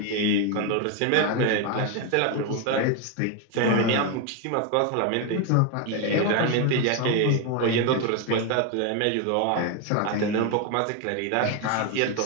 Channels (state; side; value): different; both; correlation 0.02